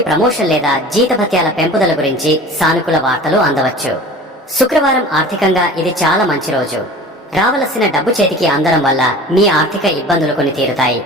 ప్రమోషన్ లేదా జీతభత్యాల పెంపుదల గురించి సానుకూల వార్తలు అందవచ్చు. శుక్రవారం ఆర్థికంగా ఇది చాలా మంచి రోజు. రావలసిన డబ్బు చేతికి అందడం వల్ల మీ ఆర్థిక ఇబ్బందులు కొని తీరుతాయి.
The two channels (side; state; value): both; normal; correlation 0.40